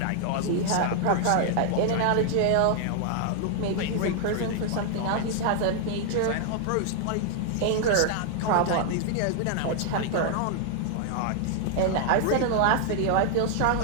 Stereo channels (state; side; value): different; both; correlation 0.00